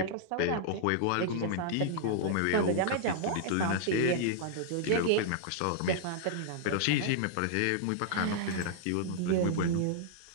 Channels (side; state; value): both; different; correlation -0.01